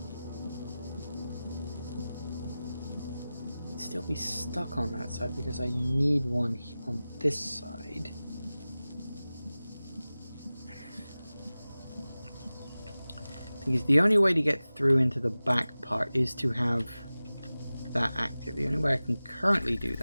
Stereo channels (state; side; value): inverted; both; correlation -0.97